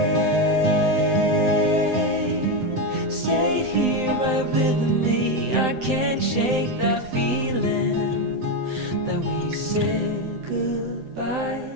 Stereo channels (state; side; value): late; left; 7.8 ms